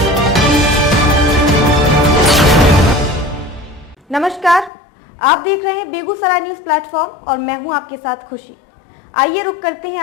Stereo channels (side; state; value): right; drops out; at 4.7 s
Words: नमस्कार, आप देख रहे हैं बेगूसराय न्यूज प्लेटफॉर्म और मैं हूं आपके साथ खुशी। आइए रुक करते हैं